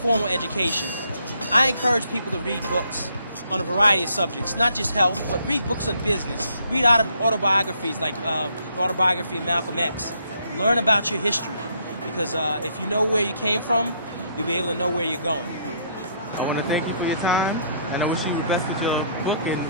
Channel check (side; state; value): both; inverted; correlation -0.68